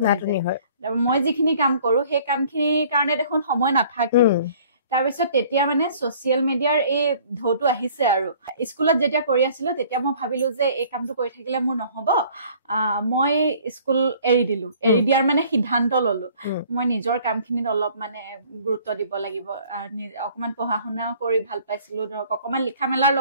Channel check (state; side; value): inverted; both; correlation -0.54